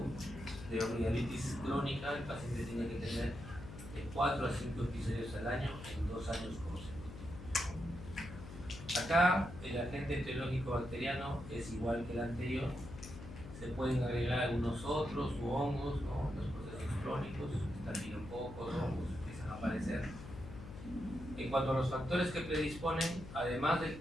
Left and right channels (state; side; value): noise; left; hum, 12 dB below the sound